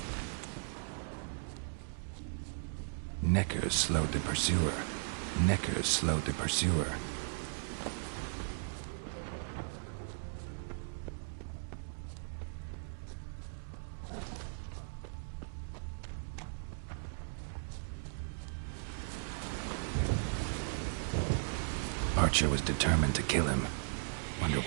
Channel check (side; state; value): left; silent; digital silence